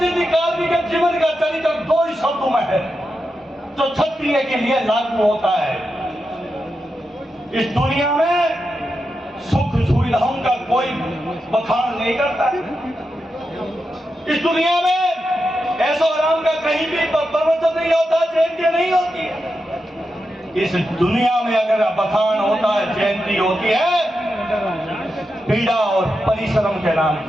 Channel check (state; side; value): normal; both; correlation 0.88